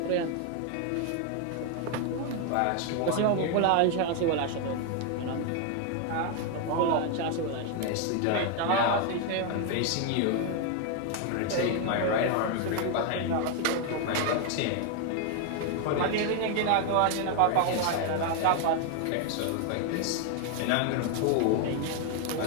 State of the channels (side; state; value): both; different; correlation 0.01